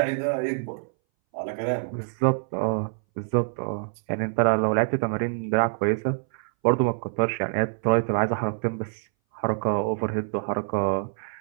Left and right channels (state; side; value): silent; left; 60 dB below the other